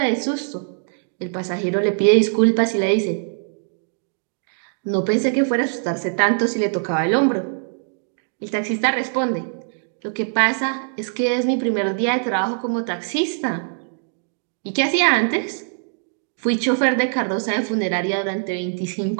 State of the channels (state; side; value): silent; left; digital silence